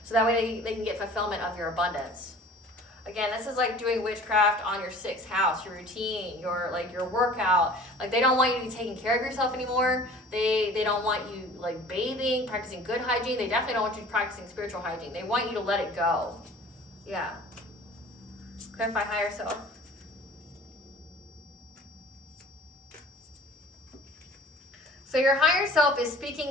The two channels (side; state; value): both; normal; correlation 0.46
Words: So that way they can get fulfillment of your abundance. Again, this is like doing witchcraft on your sixth house, your routine, your workout. Like they don't want you to be taking care of yourself anymore. They don't want you like bathing, practicing good hygiene. They definitely don't want you practicing spiritual hygiene. They want you to let it go. Yeah. Clarify higher self. So your higher self is